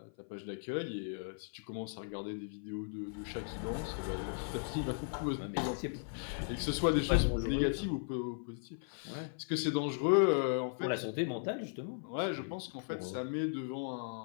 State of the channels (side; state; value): right; silent; 53 dB below the other